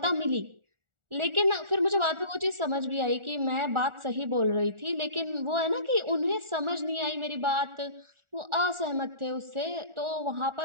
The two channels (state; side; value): late; left; 1.4 ms